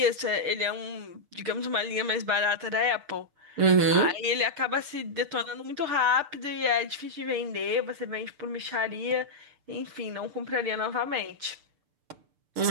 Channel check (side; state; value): left; late; 6.8 ms